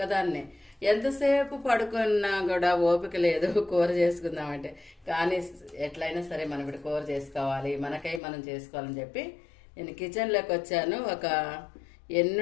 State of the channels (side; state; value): right; drops out; at 8.2 s